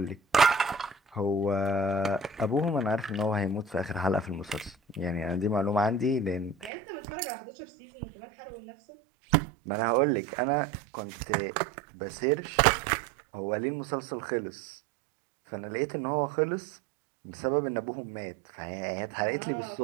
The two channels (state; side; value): drops out; left; at 6.7 s